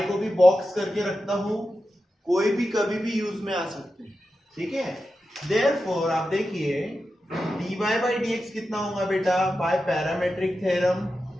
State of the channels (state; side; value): normal; both; correlation 0.91